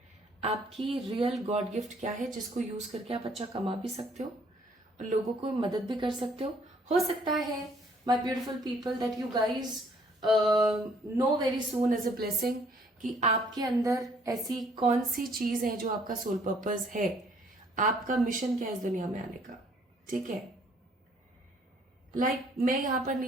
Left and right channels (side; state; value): both; normal; correlation 0.62